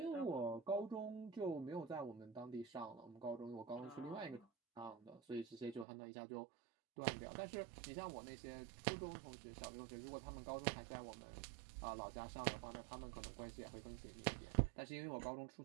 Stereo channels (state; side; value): drops out; left; at 5.9 s